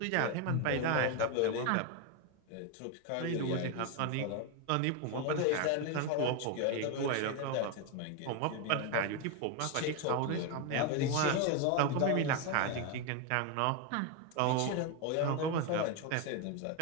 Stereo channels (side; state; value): both; different; correlation 0.02